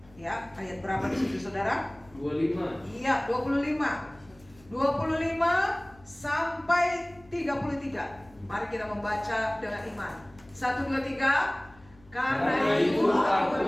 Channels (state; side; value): noise; left; hum, 26 dB below the sound